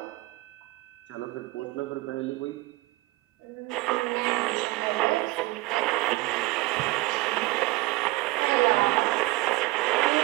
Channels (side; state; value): left; quieter; 20.4 dB